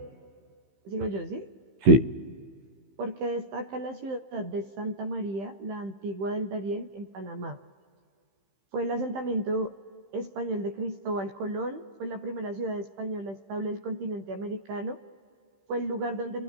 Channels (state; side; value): late; left; 15 ms